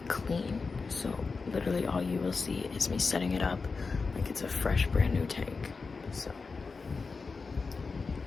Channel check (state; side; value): quieter; right; 4.5 dB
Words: clean, so literally all you will see is me setting it up like it's a fresh, brand new tank. So